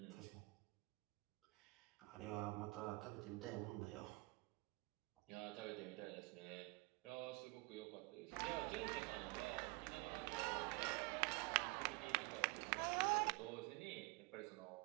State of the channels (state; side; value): quieter; left; 26.8 dB